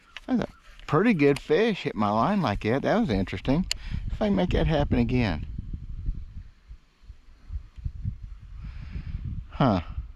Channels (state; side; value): identical; both; correlation 1.00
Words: That's a pretty good fish hit my line like that. That was interesting. If I can make that happen again. Huh.